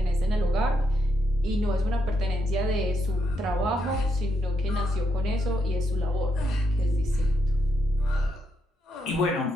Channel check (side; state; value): both; normal; correlation 0.80